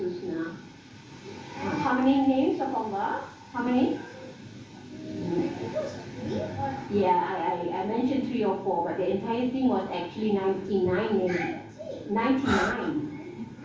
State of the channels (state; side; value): identical; both; correlation 1.00